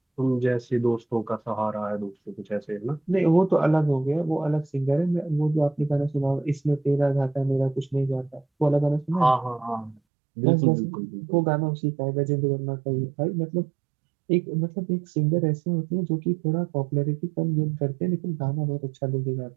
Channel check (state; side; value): drops out; left; at 10.0 s